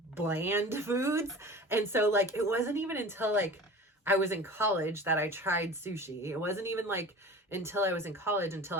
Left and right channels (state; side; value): normal; both; correlation 0.38